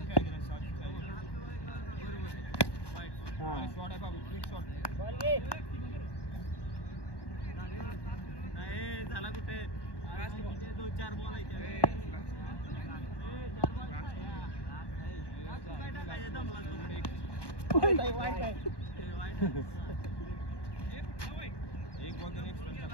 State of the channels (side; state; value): right; late; 1.1 ms